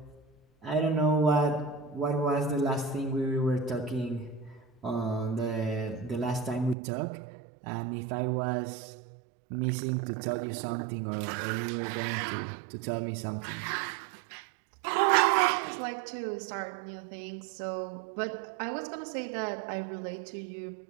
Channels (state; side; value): drops out; left; at 6.8 s